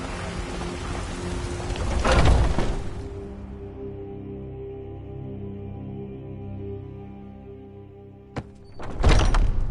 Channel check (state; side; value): identical; both; correlation 1.00